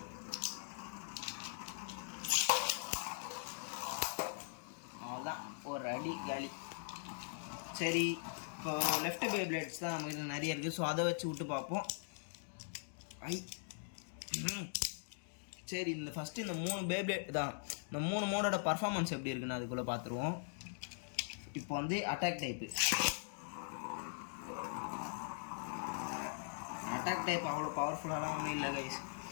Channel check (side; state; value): right; silent; digital silence